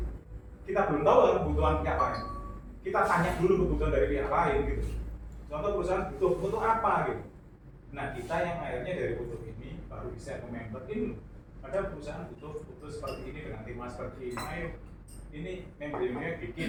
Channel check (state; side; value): identical; both; correlation 1.00